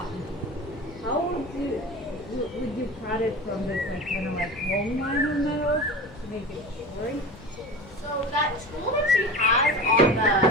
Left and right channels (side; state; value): both; normal; correlation 0.33